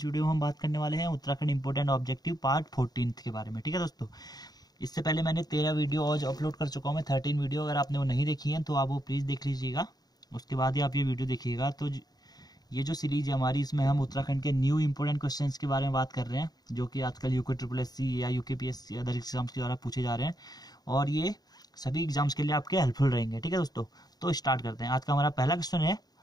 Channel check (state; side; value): late; right; 0.19 ms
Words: वीडियो में हम बात करने वाले हैं उत्तराखंड इंपोर्टेंट ऑब्जेक्टिव पार्ट 14 के बारे में। ठीक है दोस्तों, इससे पहले मैंने 13 वीडियो आज अपलोड कर चुका हूँ मैं, 13 वीडियो। अगर आपने वो नहीं देखी है तो आप वो प्लीज़ देख लीजिएगा, उसके बाद ही आप ये वीडियो देखिएगा। तो ये जो सीरीज है हमारी, इसमें हम उत्तराखंड के न्यू इंपोर्टेंट क्वेश्चंस के बारे में बात कर रहे हैं, जो कि आजकल UKSSC या UKPSC अदर एग्जाम्स के द्वारा पूछे जा रहे हैं, और ये सभी एग्जाम्स के लिए आपके हेल्पफुल रहेंगे। ठीक है दोस्तों, तो स्टार्ट करते हैं। आज का हमारा पहला क्वेश्चन है